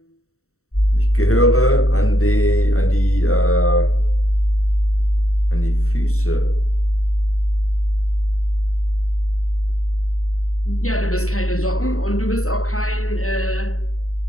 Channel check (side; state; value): right; late; 0.64 ms